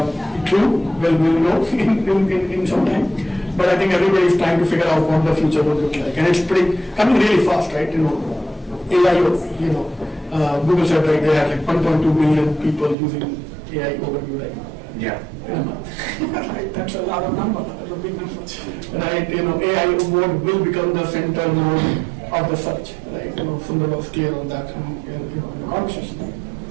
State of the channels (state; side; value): drops out; left; at 13.0 s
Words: true, well, we'll know in some time. But I think everybody is trying to figure out what the future will look like, and it's coming really fast, right? AI, Google said right they had like 1.2 million people using AI overview right now. Yeah. In a month. Right? That's a lot of number. That's a big number. Right? AI mode will become the center node of the search. Right? Sundar was clear on that in the conversation.